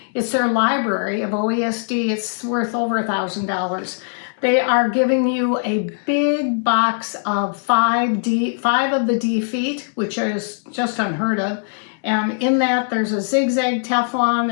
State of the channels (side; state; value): right; silent; digital silence